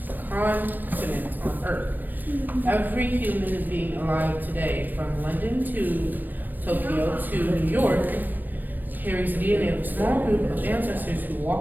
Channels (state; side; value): late; left; 0.090 ms